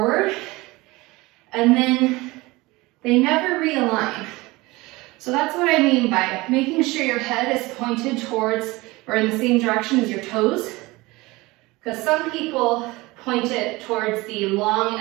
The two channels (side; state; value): left; quieter; 21.7 dB